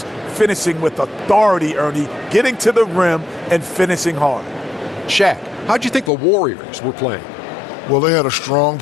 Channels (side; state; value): right; drops out; at 6.1 s